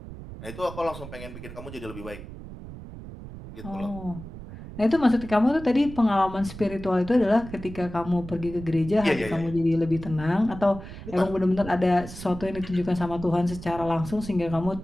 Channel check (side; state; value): right; noise; rumble, 13 dB below the sound